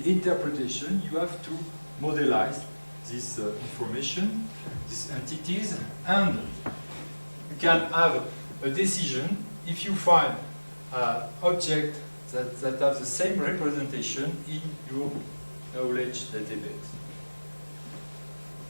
interpretation, you have to modelize this information, these entities, and you can have a decision if you find objects that have the same representation in your knowledge database.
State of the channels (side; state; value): both; inverted; correlation -1.00